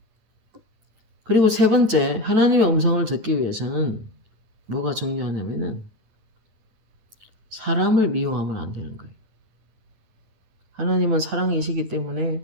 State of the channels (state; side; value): late; left; 9.2 ms